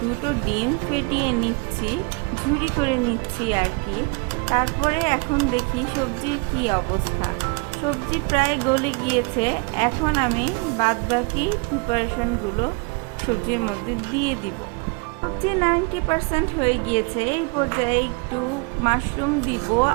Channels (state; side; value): quieter; left; 31.8 dB